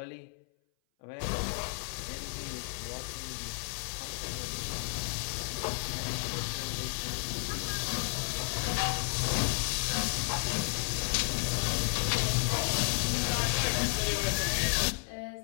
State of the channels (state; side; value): silent; right; 56 dB below the other